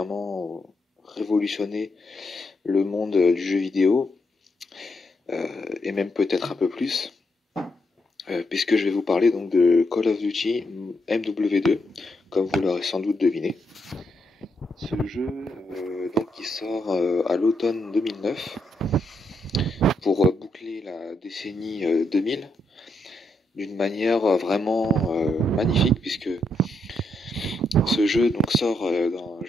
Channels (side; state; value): both; normal; correlation 0.79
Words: révolutionner le monde du jeu vidéo, et même peut-être un peu plus. Puisque je vais vous parler donc de Call of Duty MW2, comme vous l'aurez sans doute deviné. Ce jeu donc qui sort à l'automne 2009 pour boucler la décennie 2000 d'une manière vraiment magnifique, puisque ce jeu donc sort